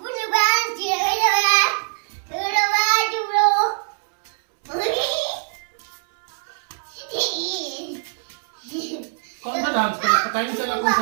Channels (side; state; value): left; silent; 64 dB below the other